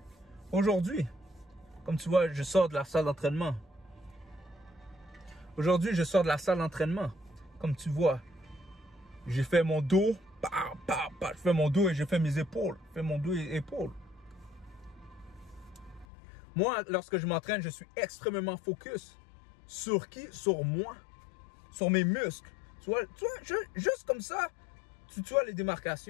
Aujourd'hui, comme tu vois, je sors de la salle d'entraînement. Comme tu vois, j'ai fait mon dos. Je fais mon dos et j'ai fait mes épaules. Moi, lorsque je m'entraîne, je suis extrêmement focus. Sur qui? Sur moi. Sur mes muscles. Tu vois, juste comme ça, tu vois les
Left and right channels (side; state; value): right; drops out; at 16.1 s